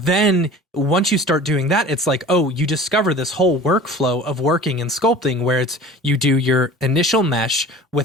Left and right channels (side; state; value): both; normal; correlation 0.41